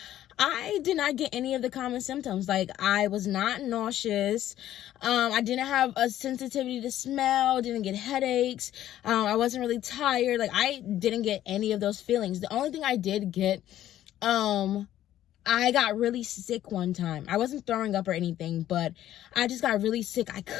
I did not get any of the common symptoms. I was not nauseous. I didn't have a sensitivity to smell, didn't get headaches. I wasn't really tired. I didn't get any of those feelings. The only thing I did get, I got really sick one time. I wasn't throwing up or anything, but I just got really sick. I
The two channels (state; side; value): quieter; right; 12.6 dB